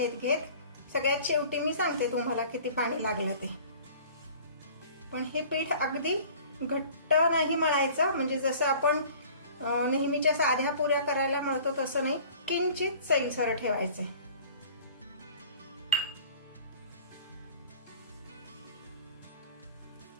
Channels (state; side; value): inverted; both; correlation -0.47